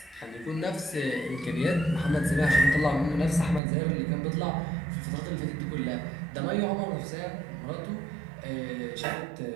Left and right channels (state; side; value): drops out; left; at 3.6 s